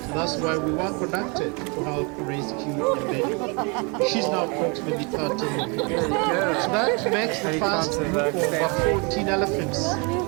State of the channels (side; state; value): left; quieter; 31.8 dB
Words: So that's why we were conducted to help rescue Nyambeni. She's now approximately 13 months. So that makes the first group of about 14 elephants.